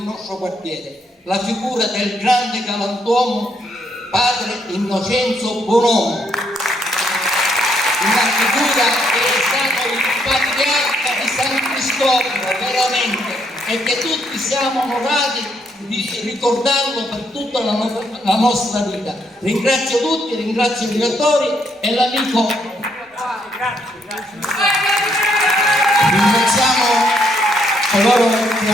quartiere, la figura del grande galantuomo padre Innocenzo Bonomo, una figura che è stato il patriarca di San Cristoforo veramente, e che tutti siamo onorati di ricordarlo per tutta la nostra vita. Ringrazio tutti, ringrazio i direttori e l'amico. Ringraziamo coloro che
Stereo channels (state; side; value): normal; both; correlation 0.73